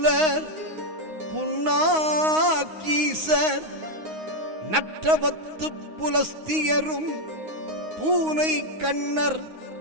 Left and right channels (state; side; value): late; left; 9.6 ms